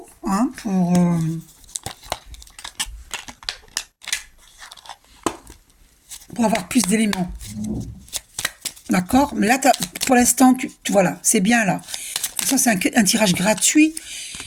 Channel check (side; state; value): both; identical; correlation 1.00